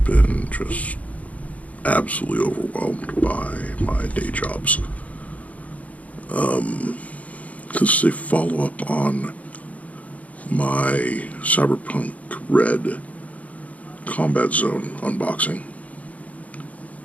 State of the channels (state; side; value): late; right; 0.070 ms